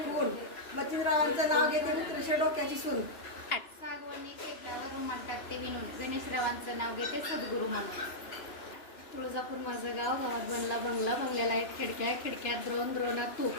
फूल मतीरावांचं नाव घेते मित्रशे डोक्याची सून. सागवणी शेतावर रुमाल टाकते विणून गणेशरावांचं नाव घेते सद्गुरू म्हणून. तुळजापूर माझं गाव, गावात बनला बंगला बंगल्याला आहेत खिडक्या खिडक्यात द्रोणात तूप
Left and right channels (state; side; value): late; right; 2.9 ms